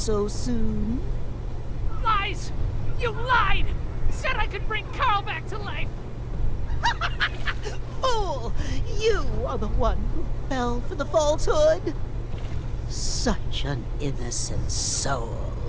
soon? Lies! You lied! Said I could bring Carl back to life! Fool! You are the one who fell for the falsehood. Such an innocent soul.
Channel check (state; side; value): identical; both; correlation 1.00